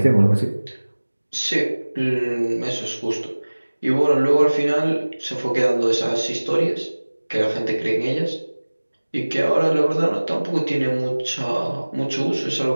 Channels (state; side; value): inverted; both; correlation -1.00